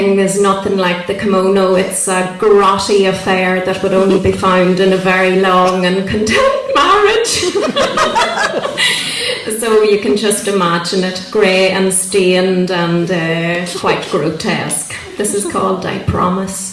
is nothing like the kimono. It's a grotty affair that would only be found in a very long and content marriage. So you can just imagine it, grey and stained and quite grotesque. This is called I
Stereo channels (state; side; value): identical; both; correlation 1.00